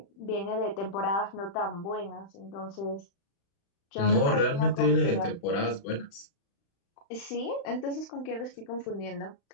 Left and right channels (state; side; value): late; right; 35 ms